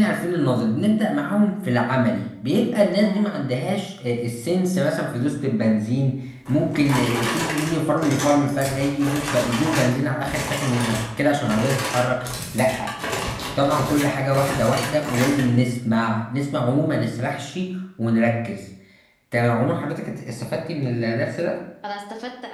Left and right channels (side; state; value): both; identical; correlation 1.00